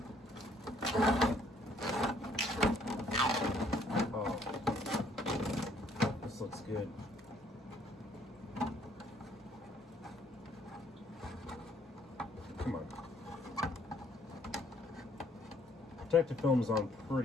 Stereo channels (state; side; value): normal; both; correlation 0.64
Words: Oh, this looks good. Come on. Protective film's on